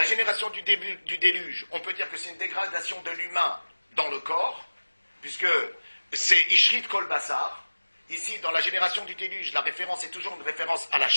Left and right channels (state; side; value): inverted; both; correlation -1.00